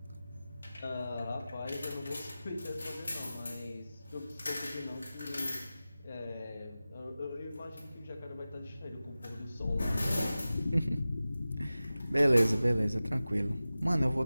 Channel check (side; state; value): both; inverted; correlation -0.96